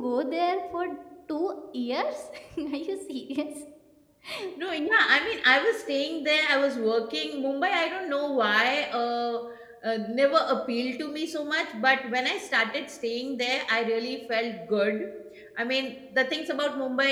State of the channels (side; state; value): both; identical; correlation 1.00